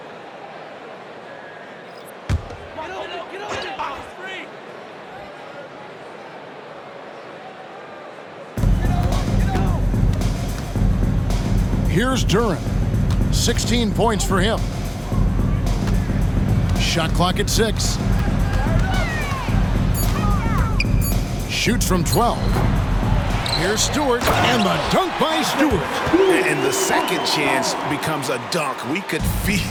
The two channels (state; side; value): identical; both; correlation 1.00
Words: Here's Duren. 16 points for him. Shot clock at 6. Shoots from 12. Here's Stewart, and the dunk by Stewart. And the second chance becomes a dunk. We could